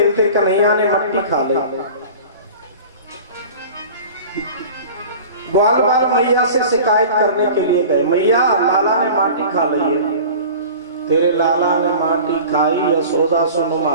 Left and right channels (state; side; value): inverted; both; correlation -0.39